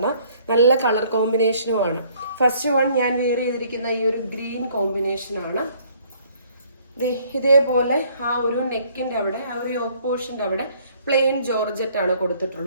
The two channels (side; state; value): both; inverted; correlation -0.61